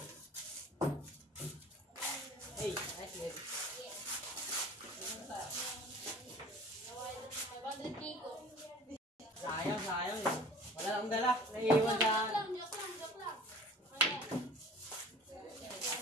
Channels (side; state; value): both; normal; correlation 0.44